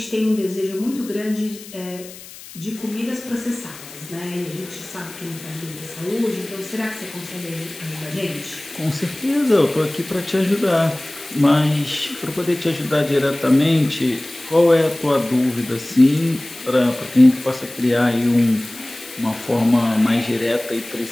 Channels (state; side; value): noise; left; hiss, 17 dB below the sound